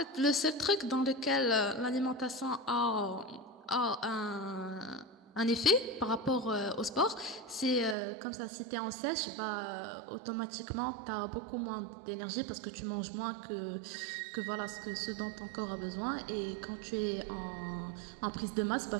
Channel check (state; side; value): drops out; left; at 8.0 s